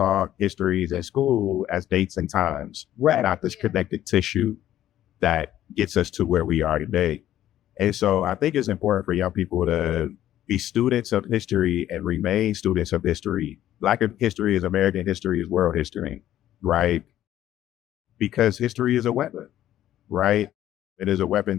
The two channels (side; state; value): right; quieter; 12.5 dB